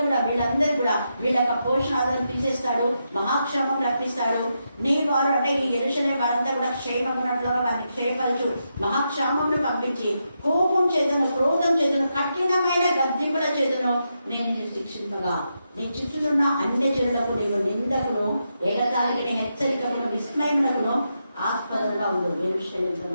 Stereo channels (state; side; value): inverted; both; correlation -0.84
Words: కూడా వీళ్ళందరూ కూడా వీళ్ళ యొక్క పోషణాలను తీసేస్తాడు, మహాక్షేమం రప్పిస్తాడు. నీ వారు అంటే ఈ యెరూషలేము వారంతా కూడా క్షేమం ఉన్నట్లుగా వారిని క్షేమపరచు, మహాక్షేమంను పంపించి కోపం చేతను, క్రోధం చేతను, కఠినమైన గద్దింపుల చేతను నేను నిన్ను శిక్షింపగా నీ చుట్టూనున్న అన్ని జనులకు నీవు నిందకును, ఎగతాళికి హెచ్చరికను, విస్మయమునకును ఆస్పదంగా ఉండదు. యెరూషలేముతో